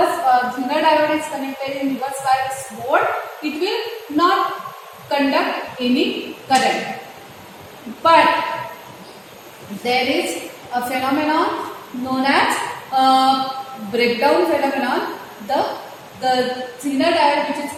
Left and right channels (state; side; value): identical; both; correlation 1.00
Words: Zener diode is connected in reverse bias mode, it will not conduct any current. But there is a phenomenon known as breakdown phenomenon. The Zener diode which is